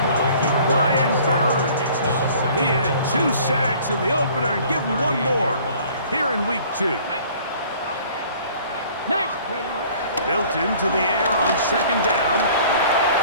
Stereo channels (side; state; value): both; inverted; correlation -0.52